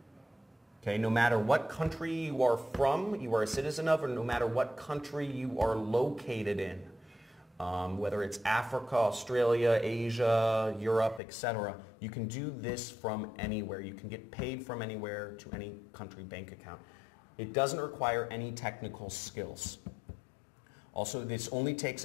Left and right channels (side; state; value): right; drops out; at 11.2 s